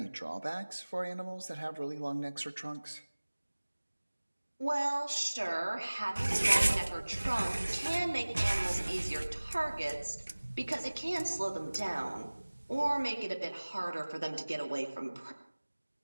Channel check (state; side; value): inverted; both; correlation -1.00